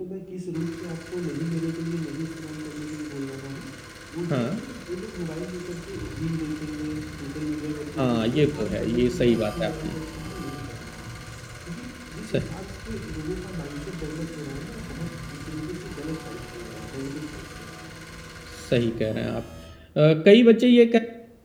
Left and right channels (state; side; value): identical; both; correlation 1.00